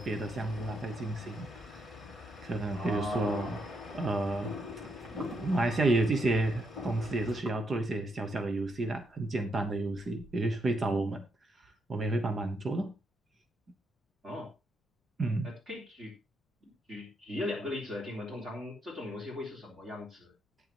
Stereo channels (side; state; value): both; normal; correlation 0.78